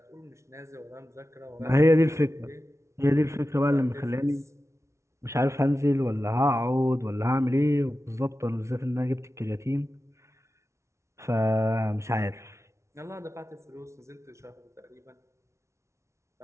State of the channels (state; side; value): late; left; 0.13 ms